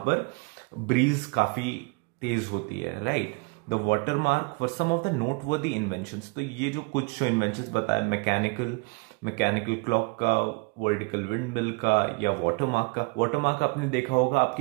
ब्रीज काफी तेज होती है. Right. The watermark for some of the noteworthy inventions. तो ये जो कुछ जो इन्वेंशंस बताए, मैकेनिकल क्लॉक का, वर्टिकल विंड मिल का, या वाटर मार्क का. वाटर मार्क आपने देखा होगा,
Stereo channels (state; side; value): quieter; left; 28.7 dB